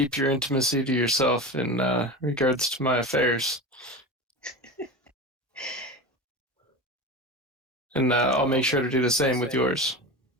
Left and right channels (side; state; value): both; normal; correlation 0.27